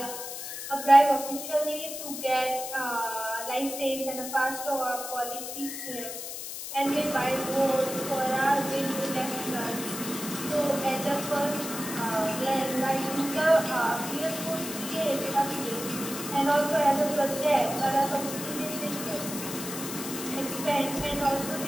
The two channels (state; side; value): noise; left; hiss, 7 dB below the sound